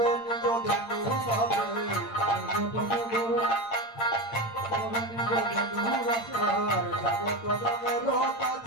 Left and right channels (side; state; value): right; late; 8.8 ms